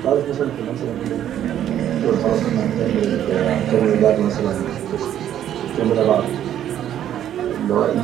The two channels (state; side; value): quieter; left; 10.9 dB